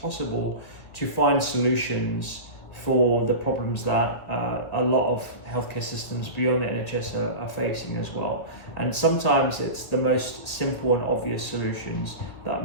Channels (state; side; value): late; right; 1.8 ms